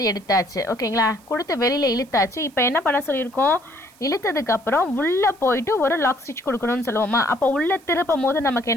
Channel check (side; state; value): right; noise; hiss, 28 dB below the sound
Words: எடுத்தாச்சு. ஓகேங்களா? கொடுத்து வெளியில் இழுத்தாச்சு. இப்போ என்ன பண்ண சொல்லியிருக்கோம், இழுத்ததுக்கப்புறம் உள்ளே போயிட்டு ஒரு லாக் ஸ்டிச் கொடுக்கணும்னு சொல்லுவோமா. அப்போ உள்ளே திருப்பும் போது நமக்கு